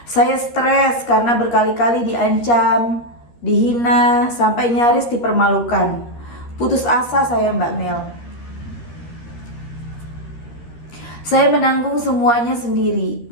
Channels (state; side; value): late; right; 13 ms